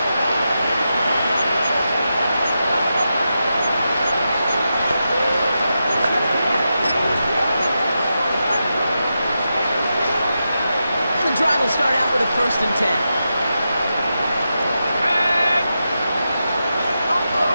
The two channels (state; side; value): inverted; both; correlation -0.88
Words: And the drive will start out with a 1st and 10.